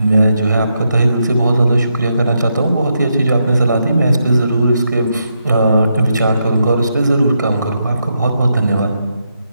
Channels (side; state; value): both; inverted; correlation -0.82